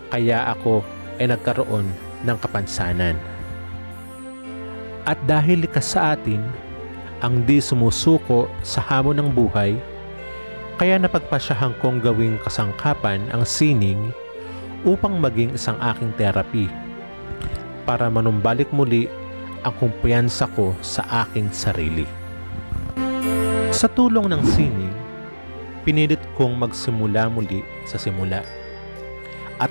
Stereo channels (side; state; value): both; inverted; correlation -1.00